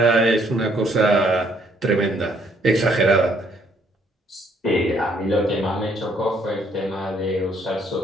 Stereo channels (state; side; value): normal; both; correlation 0.67